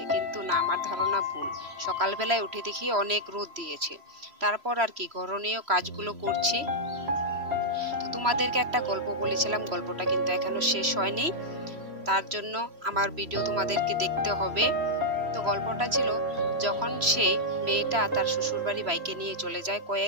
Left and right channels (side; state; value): left; late; 3.0 ms